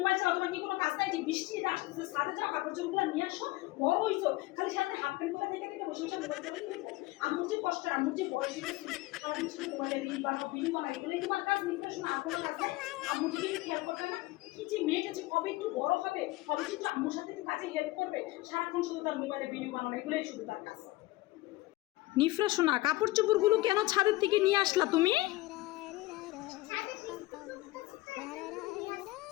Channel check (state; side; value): quieter; right; 19.3 dB